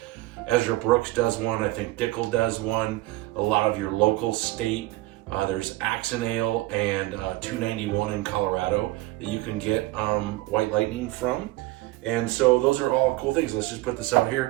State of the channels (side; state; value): left; quieter; 18.7 dB